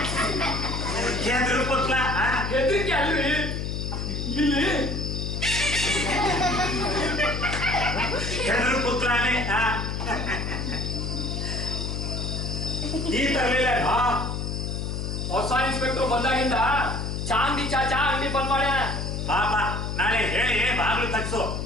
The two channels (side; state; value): left; noise; hum, 3 dB below the sound